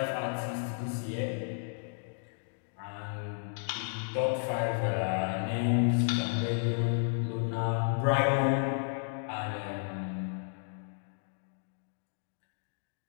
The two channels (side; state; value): right; silent; digital silence